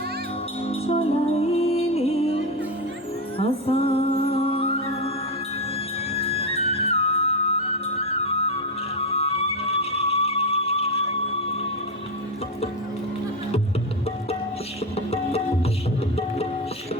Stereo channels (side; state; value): both; normal; correlation 0.13